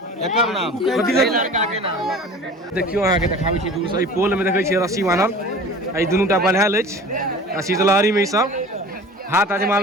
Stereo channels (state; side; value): normal; both; correlation 0.41